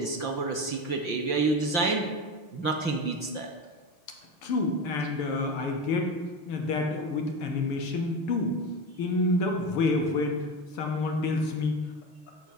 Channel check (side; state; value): right; late; 5.9 ms